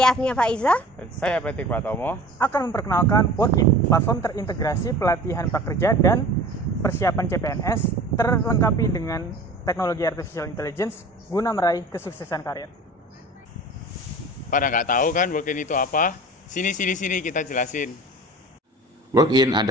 Afnia Faiza. Dan saya Patrick Pratomo. Akan memperkenalkan Workin, platform terintegrasi pelatihan prakerja dan persiapan CPNS terlengkapi dengan teknologi artificial intelligence guna meraih kesuksesan karir. Pada nggak tahu kan Workin itu apa? Sini kita jelasin. Workin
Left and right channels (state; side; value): normal; both; correlation 0.40